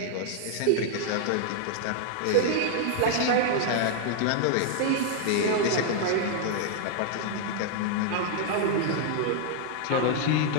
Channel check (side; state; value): both; different; correlation 0.00